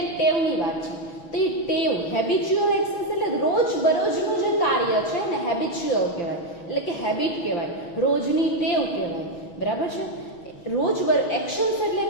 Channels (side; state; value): right; late; 5.8 ms